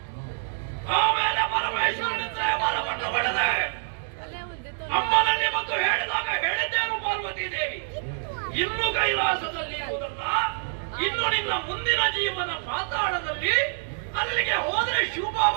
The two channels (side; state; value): left; silent; digital silence